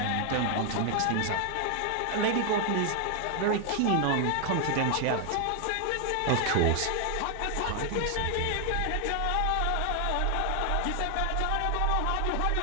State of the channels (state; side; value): different; both; correlation 0.00